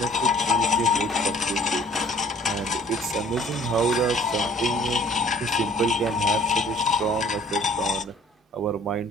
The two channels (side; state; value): both; normal; correlation 0.54